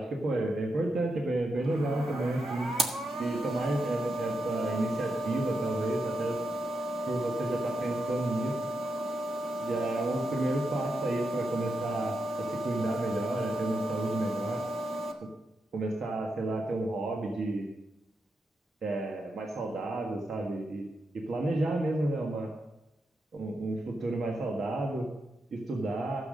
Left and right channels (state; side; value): normal; both; correlation 0.85